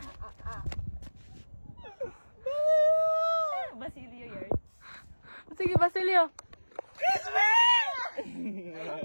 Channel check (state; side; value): inverted; both; correlation -1.00